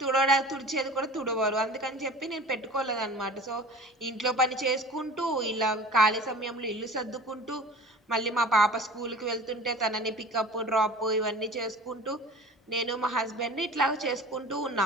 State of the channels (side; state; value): both; normal; correlation 0.41